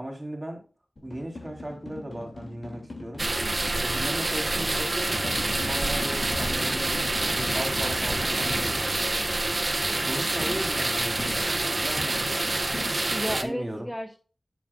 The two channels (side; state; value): both; normal; correlation 0.98